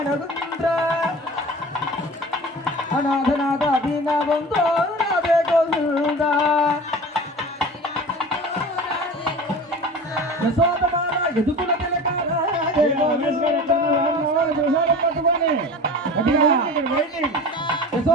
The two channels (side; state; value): both; normal; correlation 0.36